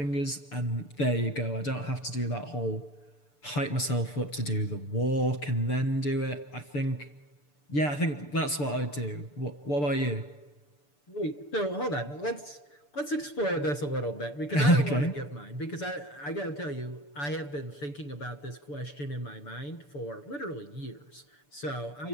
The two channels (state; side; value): late; right; 6.9 ms